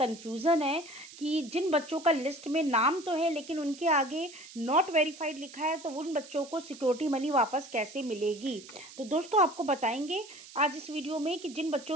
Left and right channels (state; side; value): noise; right; hiss, 18 dB below the sound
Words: है कि जिन बच्चों का लिस्ट में नाम तो है लेकिन उनके आगे नॉट वेरीफाइड लिखा है, तो उन बच्चों को सिक्योरिटी मनी वापस कैसे मिलेगी। तो दोस्तों, आपको बताएंगे आज इस वीडियो में कि जिन बच्चों